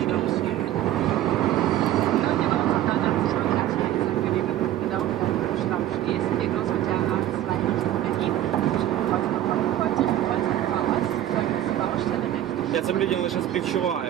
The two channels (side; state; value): left; quieter; 12.7 dB